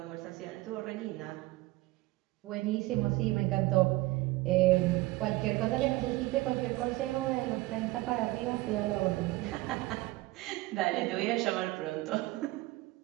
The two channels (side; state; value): left; quieter; 19.7 dB